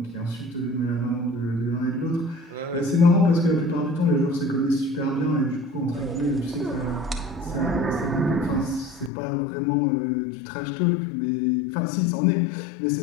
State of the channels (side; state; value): right; drops out; at 9.1 s